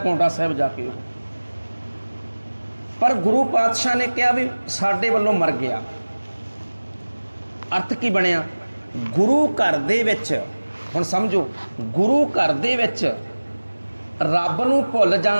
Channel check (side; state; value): both; inverted; correlation -1.00